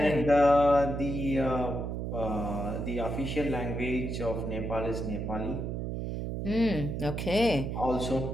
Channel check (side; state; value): right; noise; hum, 3 dB below the sound